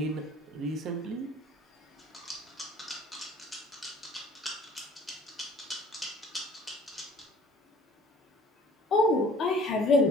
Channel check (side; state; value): both; normal; correlation 0.51